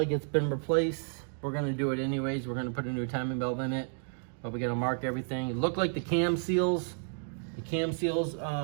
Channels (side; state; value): left; silent; 57 dB below the other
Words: it's been replaced. We're gonna do it anyways. We're gonna put a new timing belt in it, but we gotta mark everything. It looked like the cam seals. The cam seals